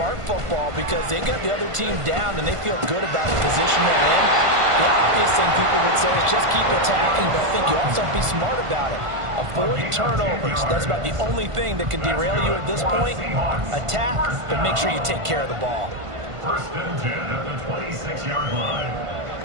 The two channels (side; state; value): left; late; 1.5 ms